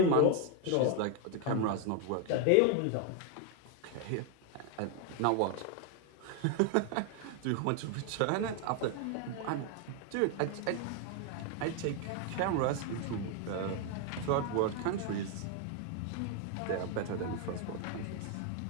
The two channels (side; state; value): both; different; correlation 0.01